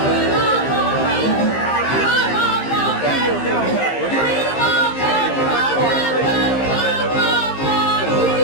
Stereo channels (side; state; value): right; late; 15 ms